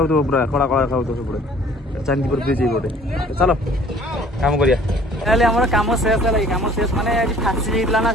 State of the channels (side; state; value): both; normal; correlation 0.53